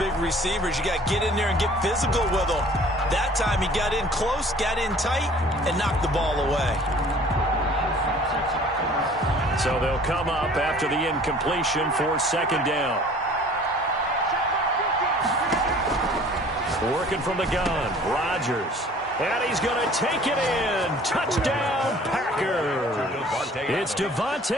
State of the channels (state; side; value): normal; both; correlation 0.50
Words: receivers. You got to get in there and get physical with them. That time he got in close, got in tight, and knocked the ball away. So they'll come up after the incompletion for second down. Working from the gun, Rodgers. And he's going to take it in. Touchdown, Packers. It's